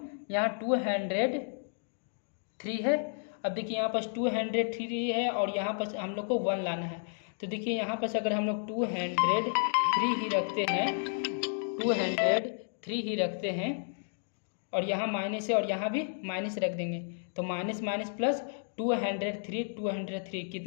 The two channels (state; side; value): silent; right; digital silence